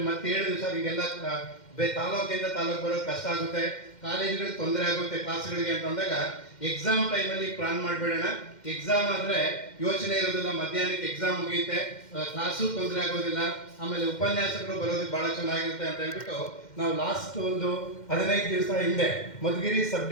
ಮತ್ತೆ ಹೇಳಿದ್ವಿ ಸರ್, ಈಗೆಲ್ಲ ತಾಲೂಕಿಂದ ತಾಲೂಕು ಬರೋದು ಕಷ್ಟ ಆಗುತ್ತೆ, ಕಾಲೇಜುಗಳಿಗೆ ತೊಂದರೆ ಆಗುತ್ತೆ ಕ್ಲಾಸ್ಗಳಿಗೆ ಅಂತಂದಾಗ ಎಕ್ಸಾಮ್ ಟೈಮಲ್ಲಿ ಪ್ಲಾನ್ ಮಾಡಿಬಿಡೋಣ. ಎಕ್ಸಾಮ್ ಆದರೆ ಯೋಚನೆ ಇರೋದಿಲ್ಲ, ಮಧ್ಯಾಹ್ನಕ್ಕೆ ಎಕ್ಸಾಮ್ ಮುಗಿಯುತ್ತೆ, ಕ್ಲಾಸು ತೊಂದರೆ ಆಗೋದಿಲ್ಲ, ಆಮೇಲೆ ಉಪನ್ಯಾಸಕರು ಬರೋದಕ್ಕೆ ಭಾಳ ಚೆನ್ನಾಗಿರುತ್ತೆ ಅಂತ ಹೇಳ್ಬಿಟ್ಟು ನಾವು ಲಾಸ್ಟ್ ಒಂದು 15 ದಿವಸ ಹಿಂದೆ ಮಧುಗಿರಿ ಸಬ್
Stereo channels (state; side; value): late; right; 2.1 ms